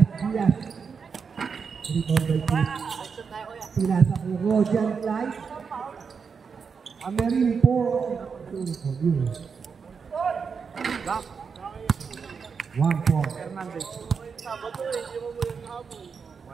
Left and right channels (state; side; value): quieter; left; 5.8 dB